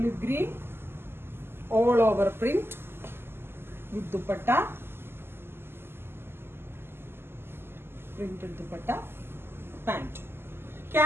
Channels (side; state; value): left; late; 0.11 ms